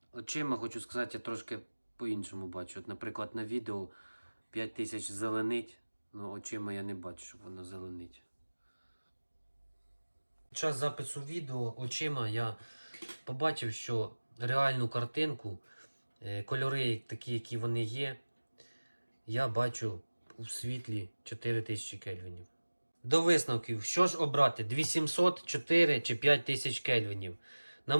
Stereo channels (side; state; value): both; inverted; correlation -1.00